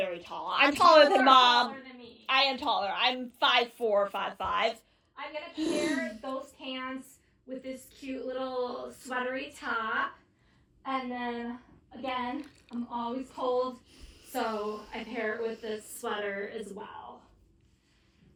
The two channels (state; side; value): identical; both; correlation 1.00